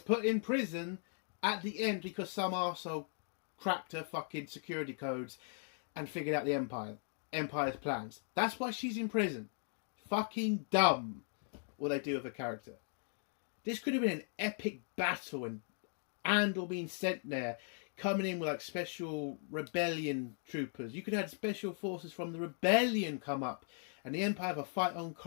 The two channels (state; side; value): silent; right; 52 dB below the other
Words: put in prison at the end because some arsehole cracked her fucking security codes and figured out the Empire's plans. That's why she's in prison. Fucking dumb what they do with her character. This could have been an epic battle and Andor being sent there, coming in with like special rebellion troopers. You could have had special forces from the rebellion come up and the Empire have a fight on